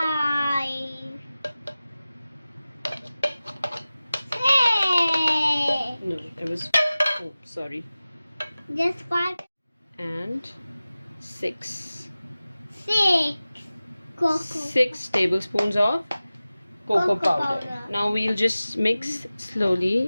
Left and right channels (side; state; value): both; inverted; correlation -0.97